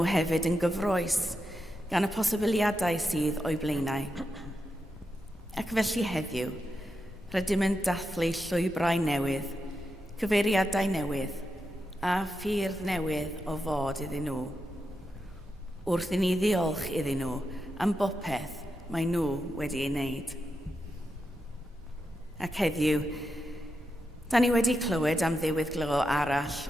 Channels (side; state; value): both; normal; correlation 0.87